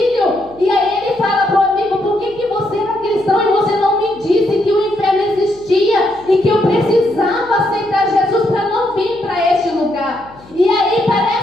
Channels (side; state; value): left; noise; hum, 24 dB below the sound